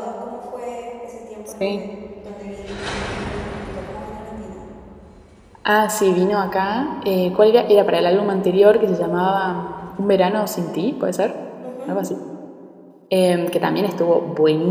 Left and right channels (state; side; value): identical; both; correlation 1.00